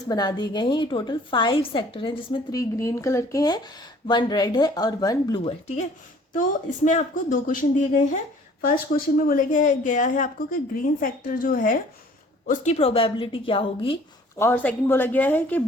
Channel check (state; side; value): normal; both; correlation 0.54